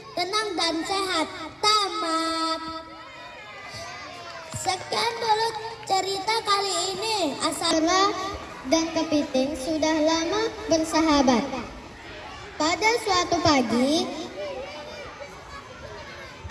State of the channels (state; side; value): identical; both; correlation 1.00